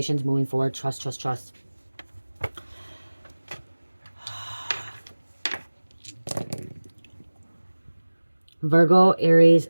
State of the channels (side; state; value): both; inverted; correlation -1.00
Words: moving forward. Trust, trust, trust. Virgo, Aries,